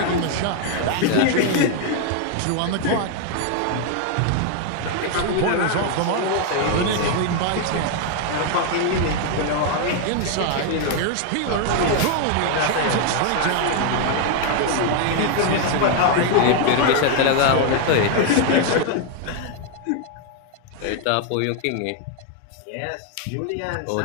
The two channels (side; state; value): both; different; correlation 0.00